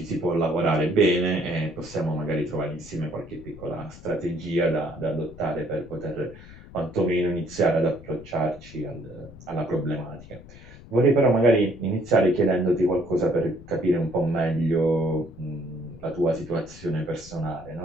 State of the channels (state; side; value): noise; left; rumble, 18 dB below the sound